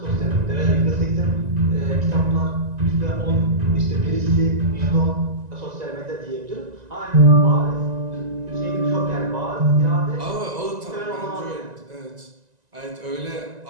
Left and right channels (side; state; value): left; late; 1.9 ms